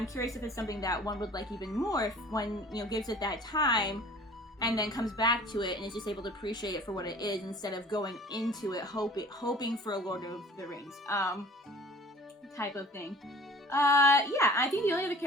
curious if it's something that one would like even more if one, you know, gives it that time and then comes back to it and is just able to appreciate it for what it is instead of going into it hoping for a Lord of the Rings type of thing. Yeah, I think the only other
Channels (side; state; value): both; normal; correlation 0.47